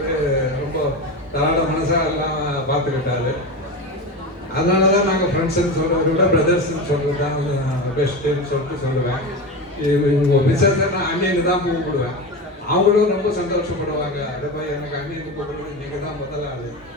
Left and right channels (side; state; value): both; normal; correlation 0.23